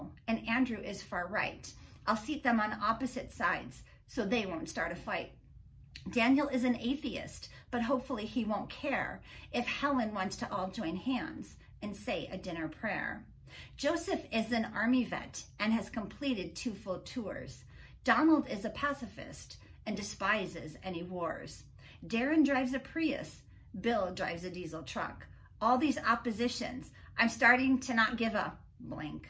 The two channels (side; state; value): both; identical; correlation 1.00